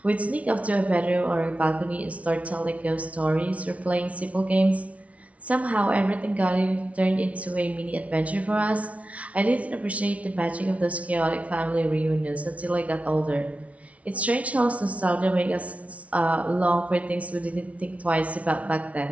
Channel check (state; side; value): late; left; 0.065 ms